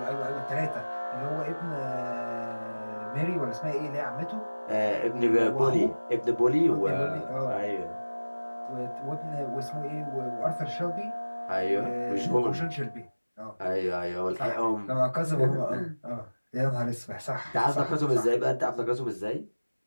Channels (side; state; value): both; inverted; correlation -1.00